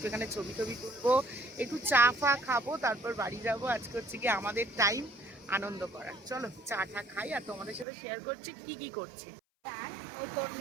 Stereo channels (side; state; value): left; drops out; at 7.9 s